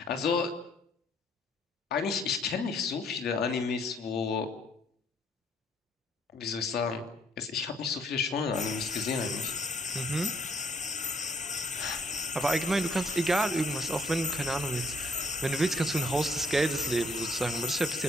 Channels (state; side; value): normal; both; correlation 0.67